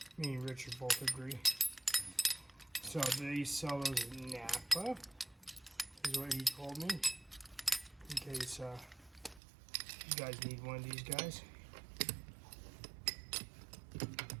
me and Richard both agree. So they sell those at Napa, is what he told me. In case you guys need one of these guys.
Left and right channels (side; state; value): left; drops out; at 9.4 s